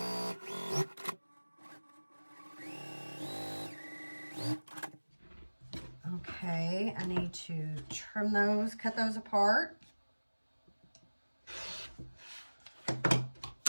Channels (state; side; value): inverted; both; correlation -1.00